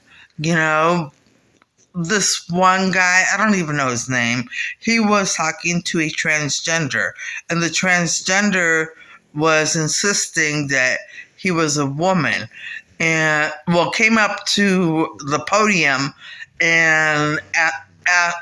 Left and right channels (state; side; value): identical; both; correlation 1.00